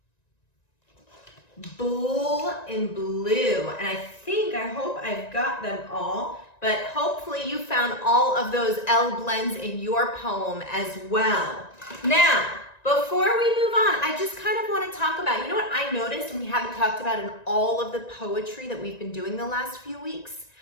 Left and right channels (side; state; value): right; late; 1.9 ms